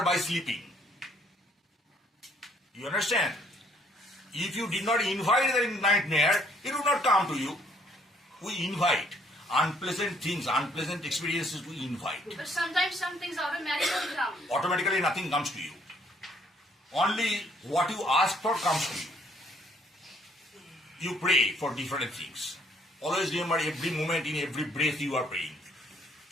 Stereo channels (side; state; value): both; normal; correlation 0.64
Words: by sleeping. You understand? If you did not invite the nightmare, it would not come to you. We invite unpleasant things, unpleasant experiences, we invite. but sometimes some things automatically come. Automatically nothing comes to you. Only what you ask for comes to you. You pray for different things. Always remember, every moment, in every breath you are praying.